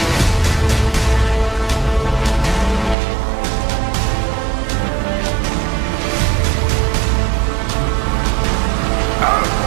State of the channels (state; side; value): drops out; left; at 3.0 s